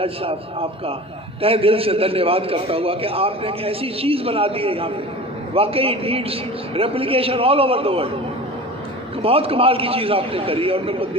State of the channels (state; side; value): normal; both; correlation 0.36